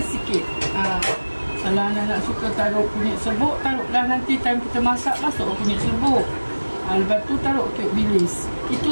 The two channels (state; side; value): inverted; both; correlation -1.00